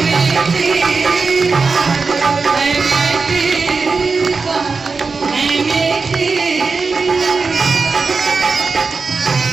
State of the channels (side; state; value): left; quieter; 4.5 dB